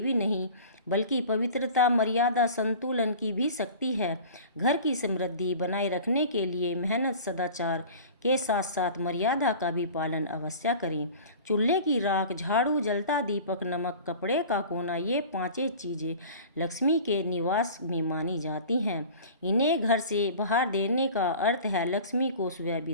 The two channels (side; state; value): both; inverted; correlation -0.40